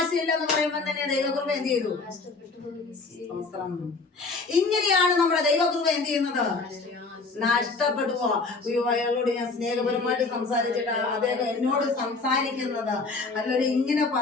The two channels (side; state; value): right; quieter; 3.9 dB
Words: പറയുമ്പോൾ തന്നെ ദൈവകൃപ എന്ത് ചെയ്തു? സ്തോത്രം. ഇങ്ങനെയാണ് നമ്മുടെ ദൈവകൃപ എന്ത് ചെയ്യുന്നത്? നഷ്ടപ്പെട്ടു പോവാ. അയാളോട് ഞാൻ സ്നേഹപരമായിട്ട് സംസാരിച്ചിട്ട് അദ്ദേഹം എന്നോട് സംസാരിക്കുന്നത് അല്ലെ ഇങ്ങനെ